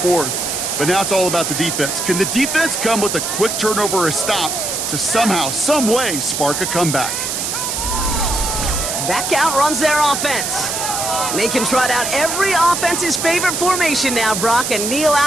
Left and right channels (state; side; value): noise; right; hiss, 2 dB below the sound